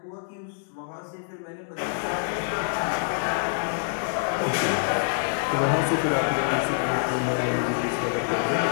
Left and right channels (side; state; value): right; silent; digital silence